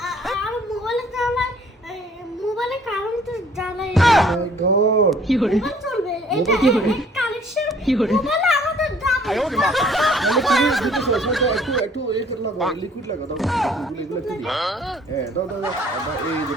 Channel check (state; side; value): normal; both; correlation 0.57